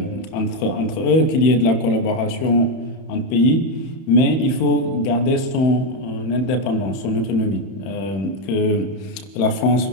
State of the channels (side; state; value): right; late; 31 ms